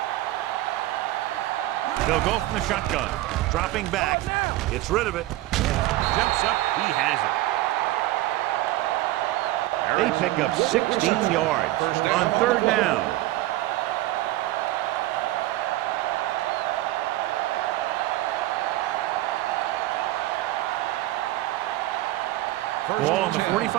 Big stuff. They'll go from the shotgun. Dropping back. Gets rid of it. Jumps up. He has it. They pick up 16 yards on third down. Ball on the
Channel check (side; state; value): left; quieter; 16.5 dB